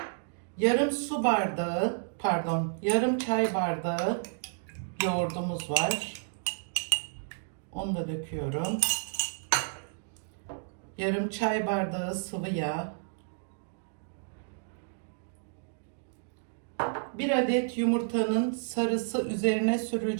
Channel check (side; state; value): left; silent; digital silence